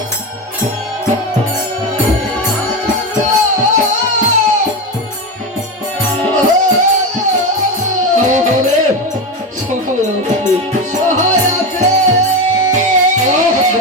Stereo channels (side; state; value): both; normal; correlation 0.17